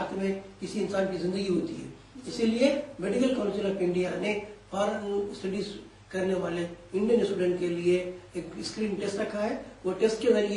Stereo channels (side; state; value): both; identical; correlation 1.00